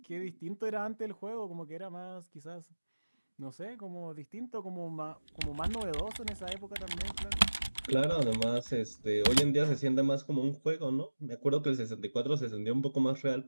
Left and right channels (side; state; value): both; inverted; correlation -1.00